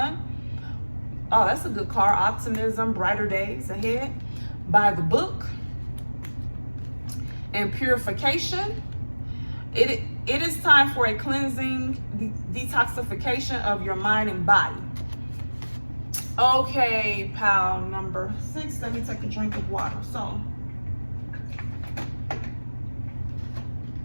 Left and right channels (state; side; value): inverted; both; correlation -1.00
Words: Oh, that's a good card. Optimism, brighter days ahead. By the book. And purification. It is time for a cleansing, detoxification of your mind and body. Okay, pile number 6. Let me take a drink of water. So,